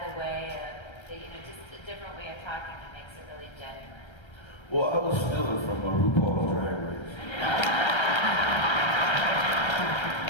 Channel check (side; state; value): right; late; 1.3 ms